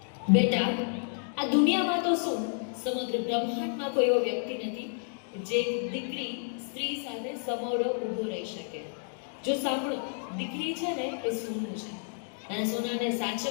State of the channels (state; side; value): silent; right; 57 dB below the other